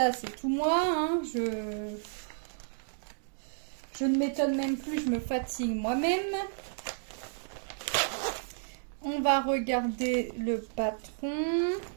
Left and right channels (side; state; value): left; silent; digital silence